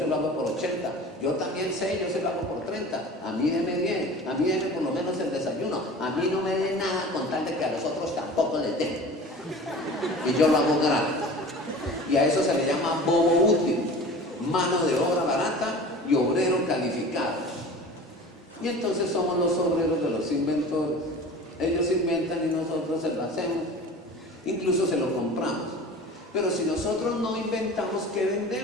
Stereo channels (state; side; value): normal; both; correlation 0.39